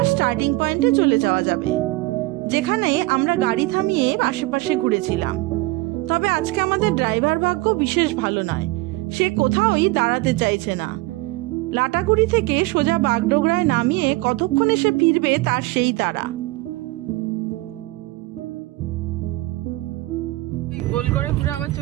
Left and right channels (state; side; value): quieter; left; 20.7 dB